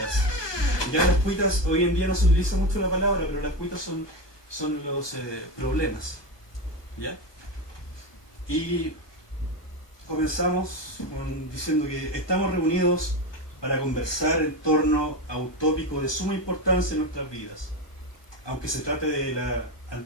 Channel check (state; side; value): late; right; 1.2 ms